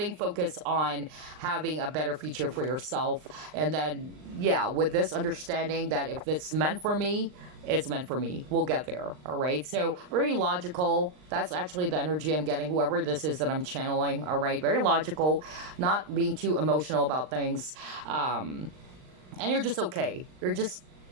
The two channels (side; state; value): left; late; 39 ms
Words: focus on having a better future for yourself. And then, yeah, with this understanding that if it's meant for me, it's meant for me. We'll get there. All right. So very logical. That's actually the energy I'm getting, whoever this is that I'm channeling. All right. Very logical, not being too emotional about things. And you're just okay. You're just,